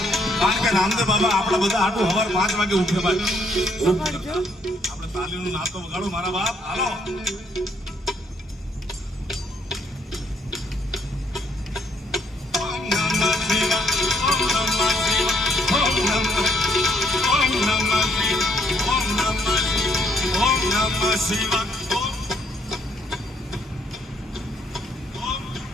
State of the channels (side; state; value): both; normal; correlation 0.70